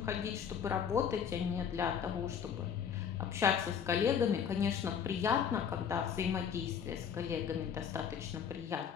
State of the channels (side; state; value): right; quieter; 7.7 dB